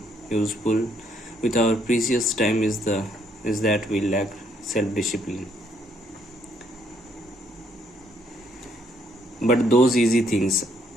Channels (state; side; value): normal; both; correlation 0.70